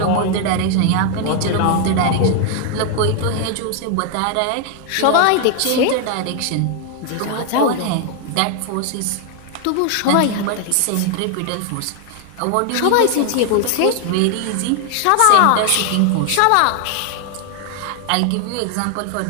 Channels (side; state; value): both; different; correlation 0.00